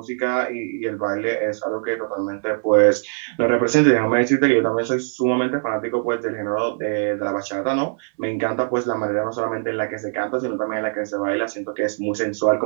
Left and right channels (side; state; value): left; silent; 61 dB below the other